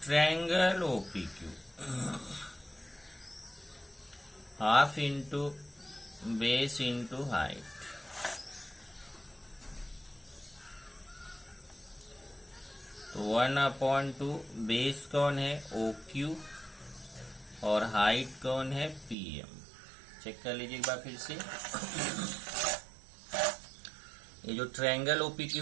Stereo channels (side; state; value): left; drops out; at 19.2 s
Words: triangle OPQ half into base into height. तो 1/2 बेस कौन है OQ और हाइट कौन है PM। चेक कर लीजिए एक बार फिर से। ये जो ट्रायंगल OPQ